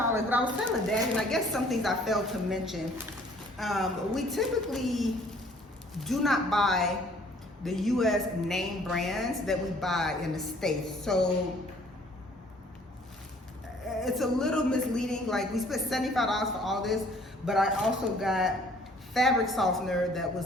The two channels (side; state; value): both; normal; correlation 0.57